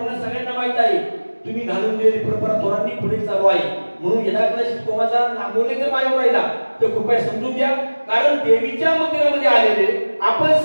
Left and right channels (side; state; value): both; inverted; correlation -1.00